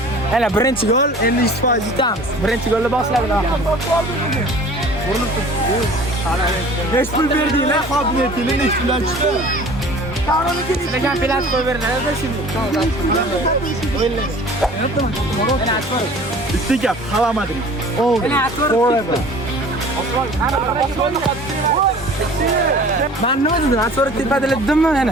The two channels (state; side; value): normal; both; correlation 0.46